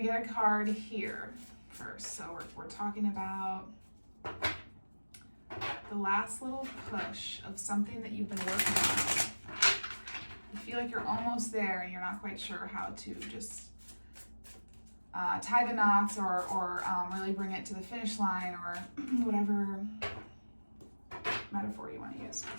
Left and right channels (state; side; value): inverted; both; correlation -1.00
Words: get a card here first. So we're talking about the last little push of something that you've been working on. You feel like you're almost there and you're not quite sure how to just tie the knots or really bring it to the finish line, or whatever metaphor you want to use